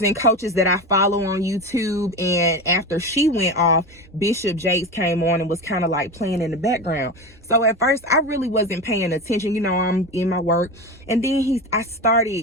and coaches that I follow on YouTube, and after she went off, Bishop Jakes came on and was kind of like playing in the background. So at first I really wasn't paying attention, I'm in my work, and then I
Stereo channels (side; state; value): both; normal; correlation 0.24